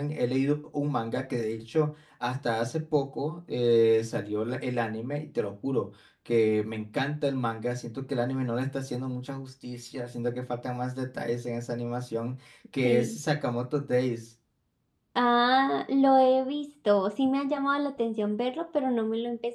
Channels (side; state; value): both; identical; correlation 1.00